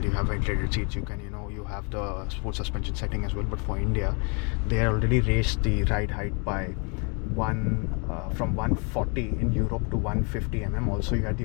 You have ventilated seats. You have the sports suspension setting as well. But for India, they already raised the ride height by from 140 in Europe to 150 mm. Also, you had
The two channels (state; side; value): quieter; right; 33.7 dB